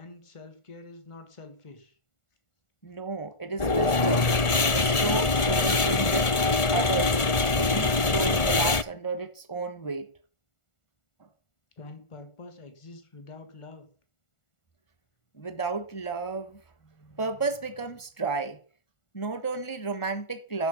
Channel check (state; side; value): late; right; 1.7 ms